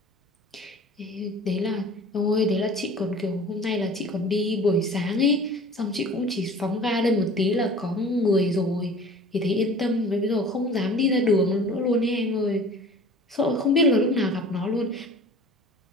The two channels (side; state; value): both; normal; correlation 0.44